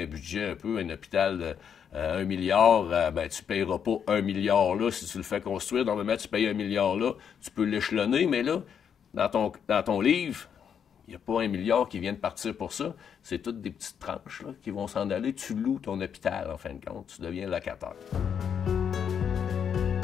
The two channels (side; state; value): right; quieter; 7.8 dB